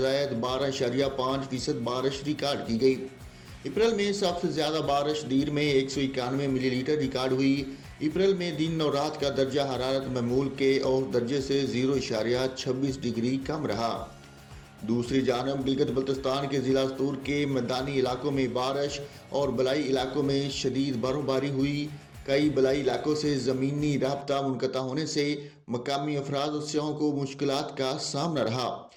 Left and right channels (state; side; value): identical; both; correlation 1.00